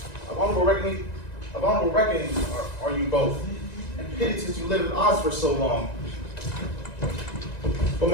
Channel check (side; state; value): right; late; 1.9 ms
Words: Of honorable reckoning are you both. And pity since you lived at odds for so long. But